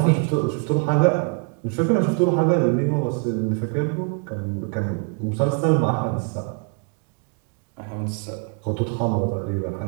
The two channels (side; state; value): left; quieter; 37.5 dB